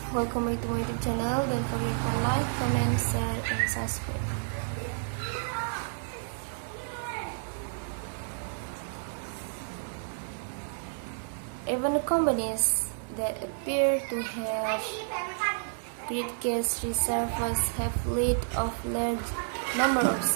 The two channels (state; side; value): silent; left; digital silence